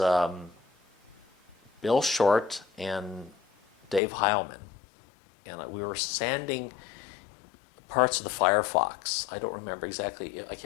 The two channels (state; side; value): drops out; right; at 4.0 s